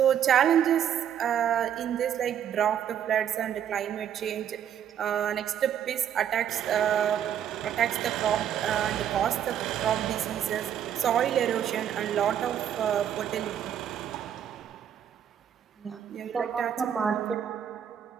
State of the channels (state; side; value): quieter; left; 9.5 dB